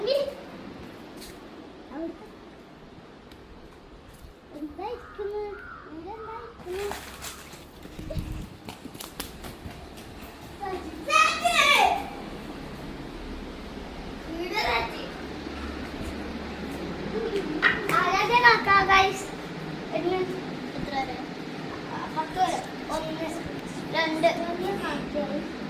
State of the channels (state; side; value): identical; both; correlation 1.00